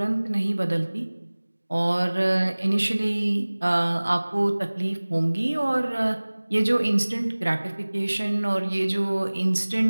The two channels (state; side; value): inverted; both; correlation -1.00